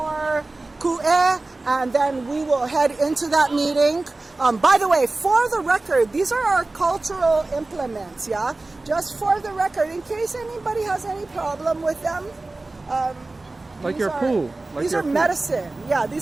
ku'e, and then we will head into that meeting. By the way, for the record, these are our cultural implements, yeah? Just for the record, in case anybody has any problem with them. Like your pool. These are medicine. Yeah,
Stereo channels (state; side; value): quieter; left; 3.2 dB